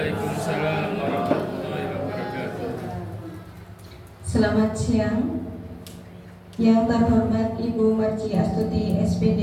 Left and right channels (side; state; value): both; identical; correlation 1.00